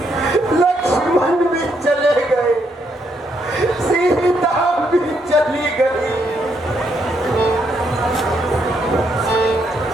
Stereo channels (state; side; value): normal; both; correlation 0.75